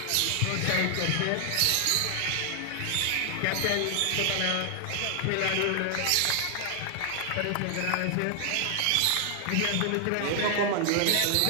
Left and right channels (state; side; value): different; both; correlation 0.00